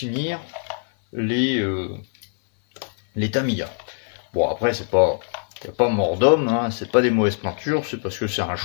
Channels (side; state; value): right; silent; 60 dB below the other